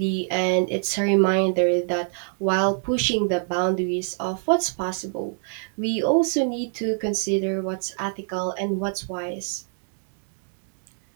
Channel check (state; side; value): silent; left; 59 dB below the other